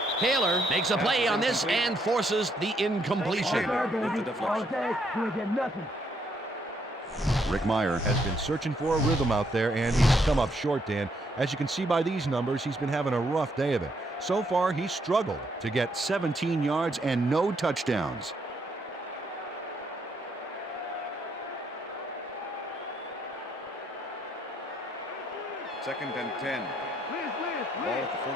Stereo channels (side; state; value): both; normal; correlation 0.73